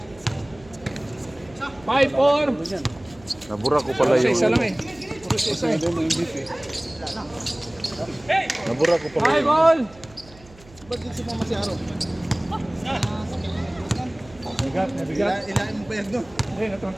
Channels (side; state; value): right; noise; hum, 23 dB below the sound